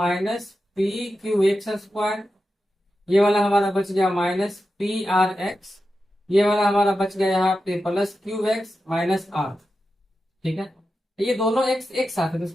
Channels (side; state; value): both; normal; correlation 0.91